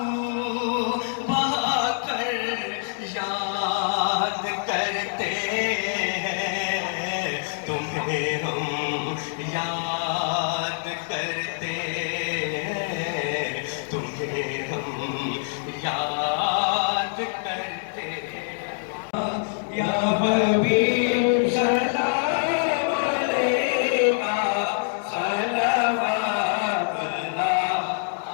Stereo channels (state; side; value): silent; right; digital silence